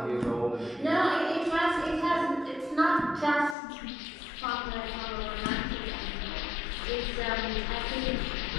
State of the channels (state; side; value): drops out; right; at 3.6 s